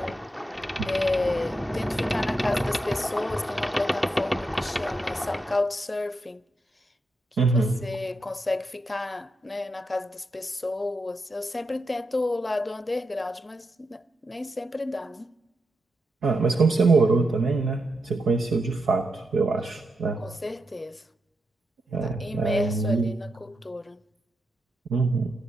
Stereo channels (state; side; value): normal; both; correlation 0.85